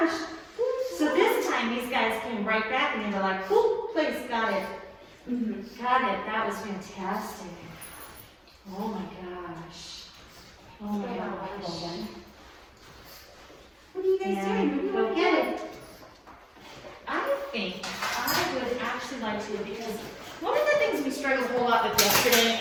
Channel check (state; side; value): identical; both; correlation 1.00